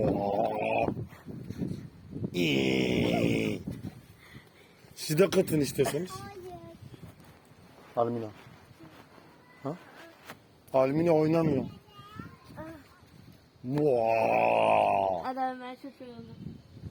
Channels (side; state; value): both; identical; correlation 1.00